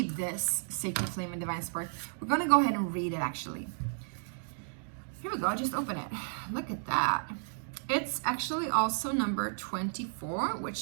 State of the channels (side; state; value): left; silent; digital silence